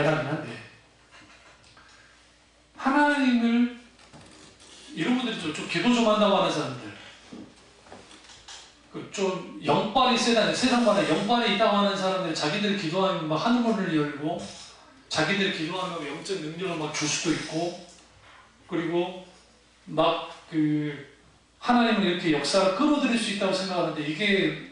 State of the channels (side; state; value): both; identical; correlation 1.00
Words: 한데 하나님을 이런 분들이 좀 기도 좀 한다고 하는 사람들 좀 영빨이 세다는 세상마다 영빨이 있다고 하는 사람들이 자기들이 기도하면 막 하늘문을 열고 자기들이 기도하면 영적 능력을 막 줄 수도 있고 그리고 막 하나님을 이렇게 역사를 끌어들일 수 있다고 생각하는데 이게